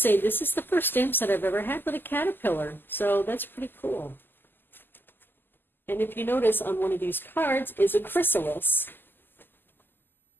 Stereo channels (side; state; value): right; late; 0.094 ms